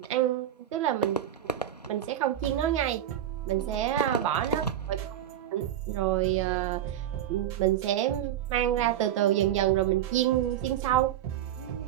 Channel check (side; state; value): left; quieter; 11.1 dB